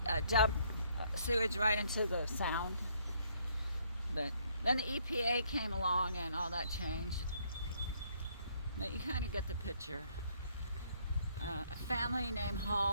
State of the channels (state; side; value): inverted; both; correlation -0.67